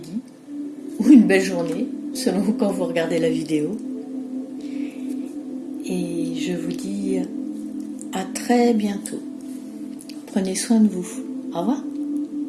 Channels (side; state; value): both; identical; correlation 1.00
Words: ou une belle journée, selon quand vous regardez la vidéo. Et je vous dis à très bientôt. Prenez soin de vous. Au revoir.